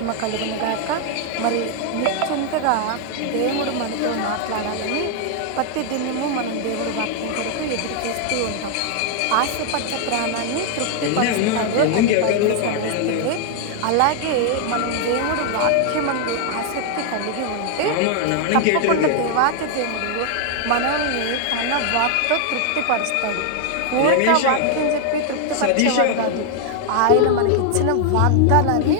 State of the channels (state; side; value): different; both; correlation 0.00